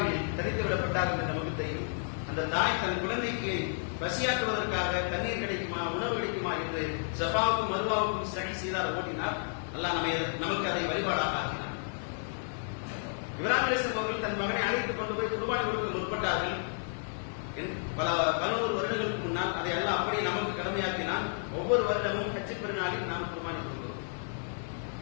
தனித்து விடப்பட்டார்கள் என்று நமக்கு தெரியும். அந்த தாய் தன் குழந்தைக்கு பசியாற்றுவதற்காக தண்ணீர் கிடைக்குமா, உணவு கிடைக்குமா என்று சஃபாவுக்கும் மருவாவுக்கும் சரி செய்தார், ஓட்டினார். அல்லாஹ் நமக்கு அதை வழிபாடாக ஆக்கினார். இப்ராஹிம் அலைஹிஸ்ஸலாம் அவர்கள் தன் மகனை அழைத்துக் கொண்டு போய் குர்பானி கொடுக்க முற்பட்டார்கள். பல 11 வருடங்களுக்கு முன்னால் அதை எல்லாம் அப்படியே நமக்கு கடமையாக்கினான். ஒவ்வொரு வருடமும் ஹஜ் பெருநாளில் நாம் குர்பானி கொடுக்கிறோம்.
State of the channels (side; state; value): right; silent; 57 dB below the other